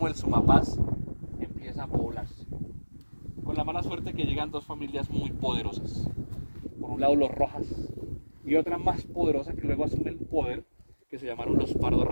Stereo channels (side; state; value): both; inverted; correlation -1.00